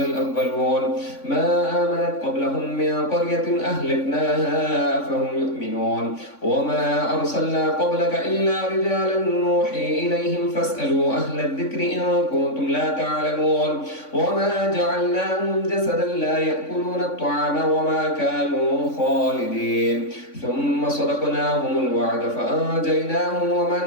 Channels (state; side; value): late; right; 3.6 ms